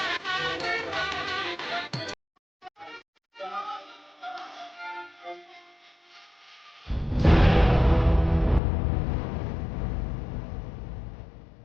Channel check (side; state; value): right; drops out; at 8.6 s